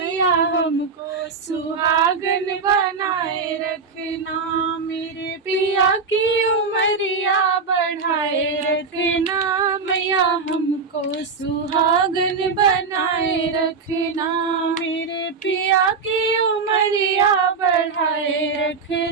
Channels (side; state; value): left; quieter; 5.0 dB